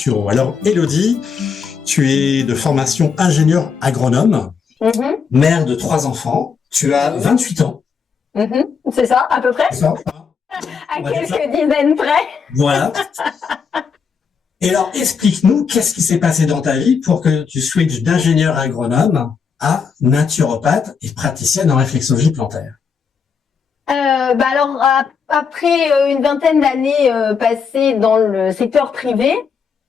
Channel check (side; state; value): right; quieter; 6.0 dB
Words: Alors Élodie, tu es de formation ingénieur agronome, mère de 3 enfants. Tu as 28 ans. C'est ça, à peu près. C'est ça, à quelques dizaines près. Voilà. Et alors, explique-nous, qu'est-ce qui s'est passé dans ta vie pour que tu switches d'ingénieur agronome à naturopathe et praticienne en réflexologie plantaire? Alors, après une vingtaine d'années passées dans le secteur privé,